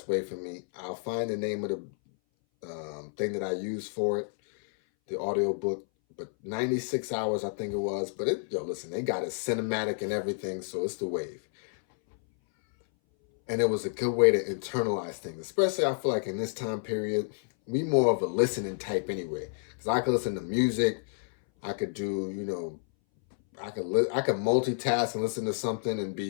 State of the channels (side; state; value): right; silent; 58 dB below the other